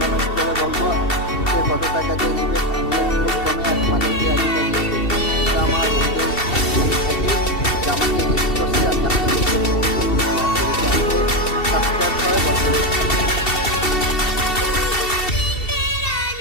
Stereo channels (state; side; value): late; right; 2.7 ms